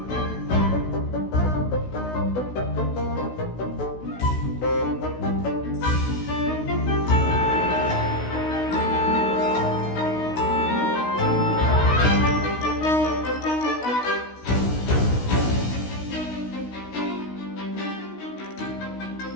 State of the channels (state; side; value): late; right; 16 ms